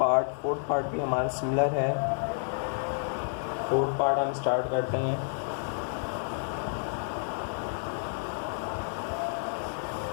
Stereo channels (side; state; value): right; silent; 58 dB below the other